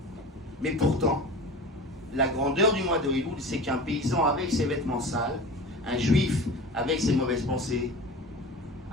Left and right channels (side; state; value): both; normal; correlation 0.34